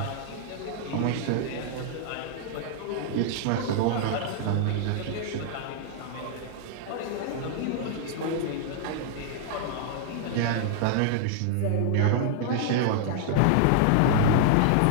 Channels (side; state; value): both; different; correlation -0.01